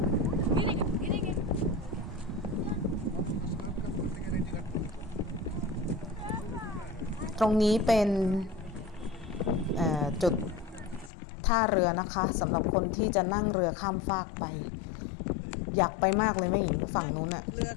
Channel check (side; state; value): right; drops out; at 11.1 s